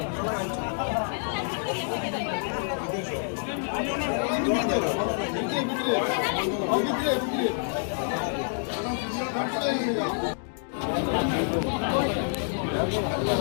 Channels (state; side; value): silent; right; digital silence